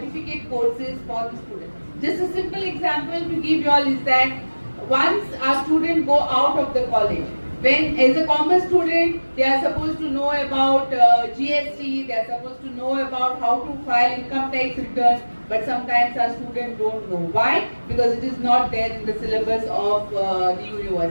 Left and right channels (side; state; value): both; inverted; correlation -1.00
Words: courses for the students. Just a simple example to give you all is that once our students go out of the college, when as a commerce student, they are supposed to know about GST, they are supposed to know about how to file income tax return, but sometimes our students don't know. Why? Because it is not there in the syllabus of the